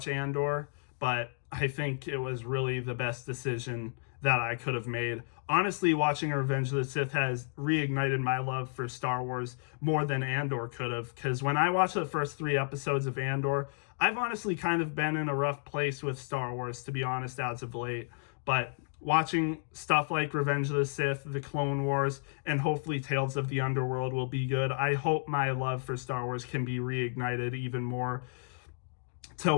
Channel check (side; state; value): right; silent; digital silence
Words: Andor, but I think it was really the best decision that I could have made. Honestly, watching Revenge of the Sith has reignited my love for Star Wars more than Andor could have, because when I watched the first 3 episodes of Andor, I've honestly kind of been in a rough place with Star Wars, to be honest, as of late. But watching stuff like Revenge of the Sith, The Clone Wars, and hopefully Tales of the Underworld will be good. I hope my love for Star Wars can be reignited even more to